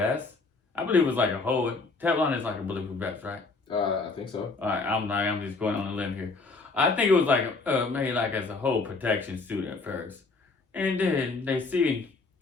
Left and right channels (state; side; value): quieter; right; 3.8 dB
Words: I believe it was like a whole. Teflon is like a bulletproof vest, right? I think so. All right, I'm just going on a limb here. I think it was like made like as a whole protection suit at first, and then they see